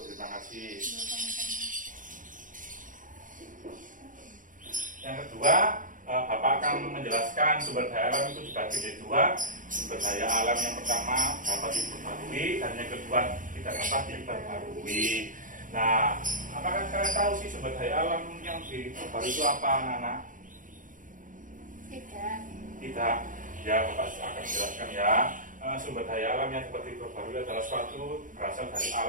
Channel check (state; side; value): late; left; 0.38 ms